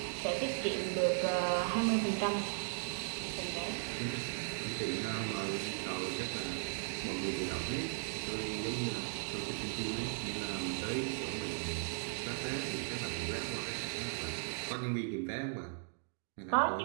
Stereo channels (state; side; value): silent; left; digital silence